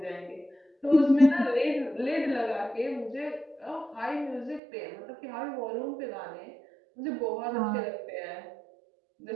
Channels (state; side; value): drops out; left; at 4.6 s